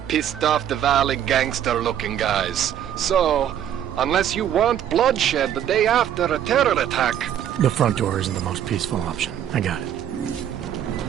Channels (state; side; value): quieter; left; 10.2 dB